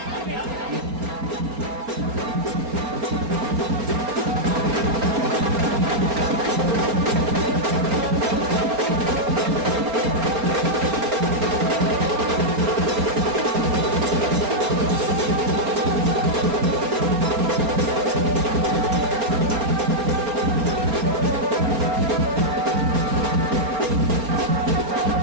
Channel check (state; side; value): late; left; 4.3 ms